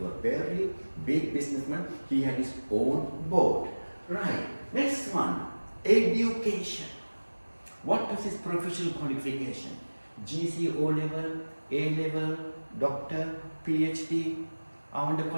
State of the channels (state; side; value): inverted; both; correlation -1.00